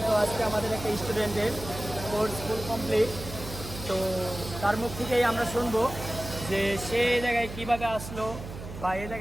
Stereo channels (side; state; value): right; noise; hum, 11 dB below the sound